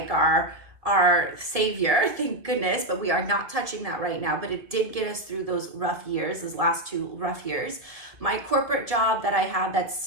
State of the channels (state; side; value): late; left; 2.0 ms